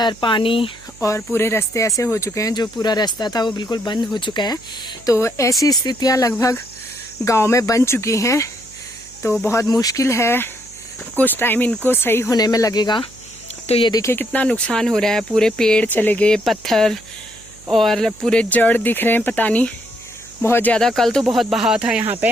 पानी और पूरे रास्ते ऐसे हो चुके हैं। जो पूरा रास्ता था वो बिल्कुल बंद हो चुका है। तो ऐसी स्थितियां लगभग गांव में बन चुकी हैं। तो बहुत मुश्किल है, कुछ टाइम इनको सही होने में लगेगा। तो ये देखिए कितना नुकसान हो रहा है। पूरे पेड़ चले गए, पत्थर और पूरे जड़ दिख रहे हैं, पता नहीं बहुत ज़्यादा। कल तो बहुत बहाव था यहाँ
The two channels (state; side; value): noise; right; hum, 24 dB below the sound